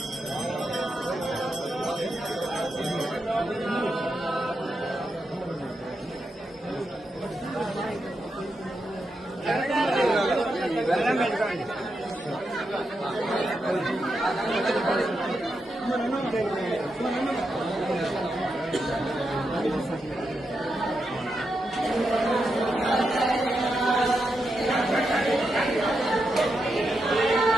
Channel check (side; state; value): both; normal; correlation 0.85